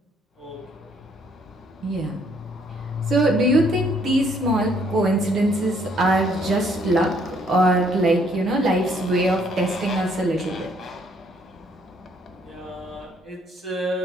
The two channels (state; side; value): normal; both; correlation 0.66